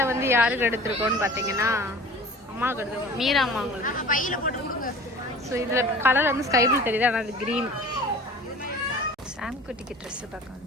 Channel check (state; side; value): normal; both; correlation 0.42